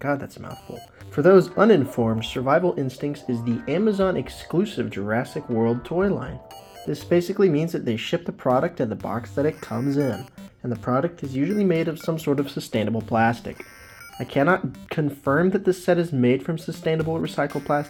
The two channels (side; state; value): both; identical; correlation 1.00